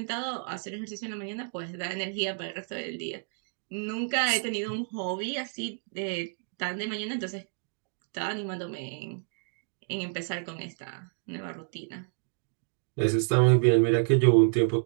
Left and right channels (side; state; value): left; silent; digital silence